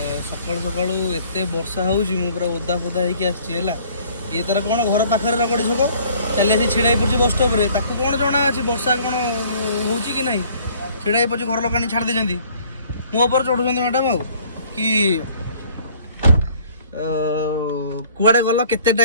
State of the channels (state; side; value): inverted; both; correlation -0.56